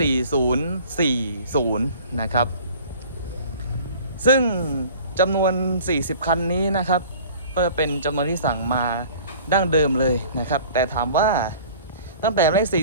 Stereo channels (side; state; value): both; inverted; correlation -0.47